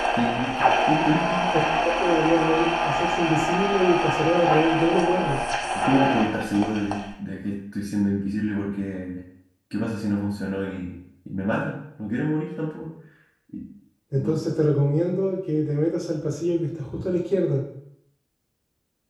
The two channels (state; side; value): identical; both; correlation 1.00